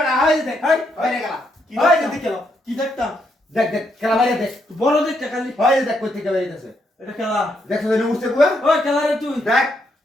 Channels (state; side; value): normal; both; correlation 0.77